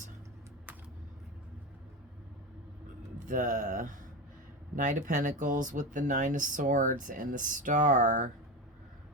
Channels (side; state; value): both; normal; correlation 0.20